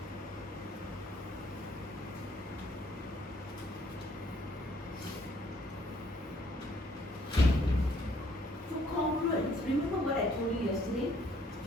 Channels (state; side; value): normal; both; correlation 0.64